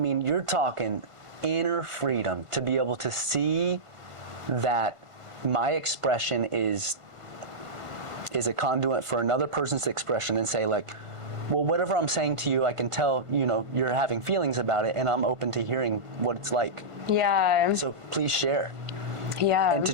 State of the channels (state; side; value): late; left; 1.5 ms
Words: you're talking inner freedom to be able to see that my expression is a conduit for another person's expression, and say, like, well, whatever I'm saying to you, I can tell, you're having feelings about it, and I'm open to hearing what it's like. Yeah. So please share. Yeah. And